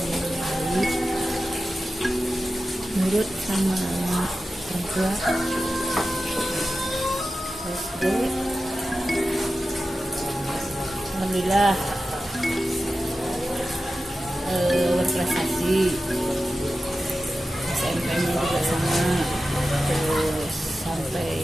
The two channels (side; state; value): both; normal; correlation 0.93